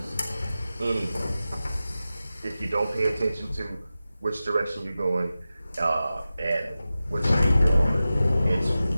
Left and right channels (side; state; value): both; inverted; correlation -0.94